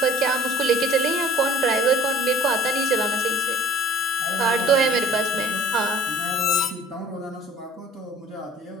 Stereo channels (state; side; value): normal; both; correlation 0.51